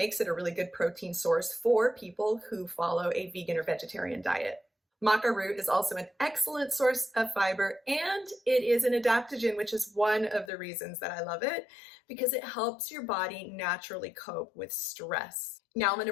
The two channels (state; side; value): drops out; right; at 10.5 s